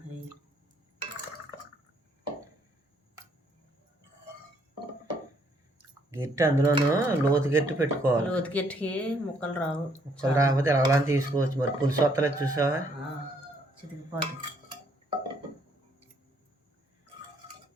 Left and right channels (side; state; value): both; normal; correlation 0.68